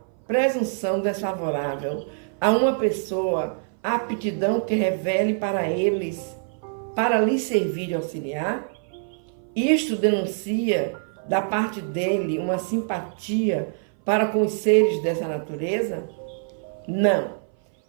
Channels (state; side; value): silent; left; 59 dB below the other